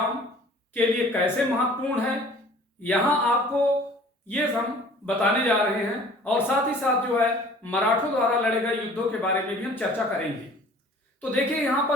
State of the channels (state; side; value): normal; both; correlation 0.49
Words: के लिए कैसे महत्वपूर्ण है, यहां आपको ये हम बताने जा रहे हैं और साथ ही साथ जो है मराठों द्वारा लड़े गए युद्धों के बारे में भी हम चर्चा करेंगे। तो देखिए यहां